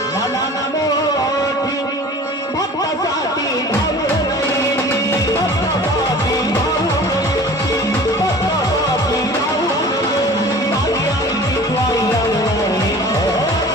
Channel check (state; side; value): normal; both; correlation 0.43